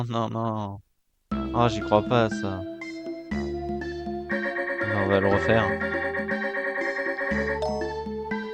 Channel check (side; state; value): both; identical; correlation 1.00